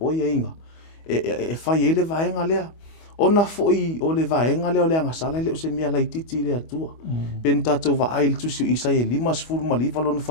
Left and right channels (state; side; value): late; right; 25 ms